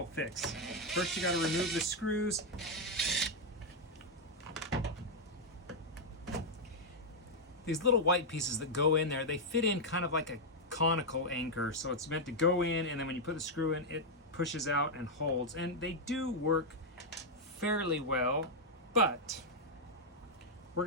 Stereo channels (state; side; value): normal; both; correlation -0.01